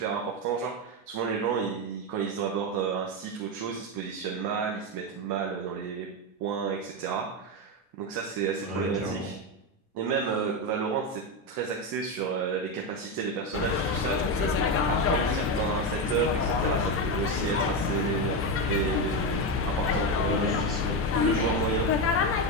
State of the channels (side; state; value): both; normal; correlation 0.11